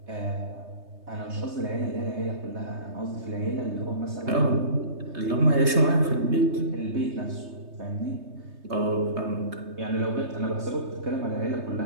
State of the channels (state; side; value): late; left; 3.3 ms